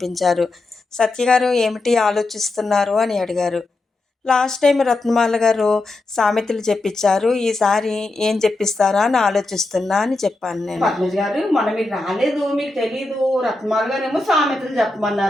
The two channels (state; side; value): quieter; right; 3.0 dB